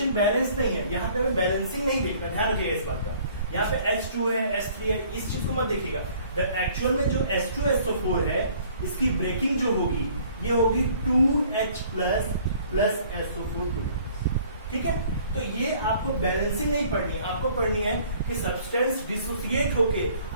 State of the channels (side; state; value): both; inverted; correlation -0.56